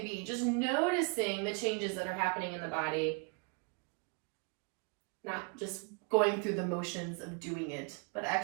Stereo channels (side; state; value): left; quieter; 33.5 dB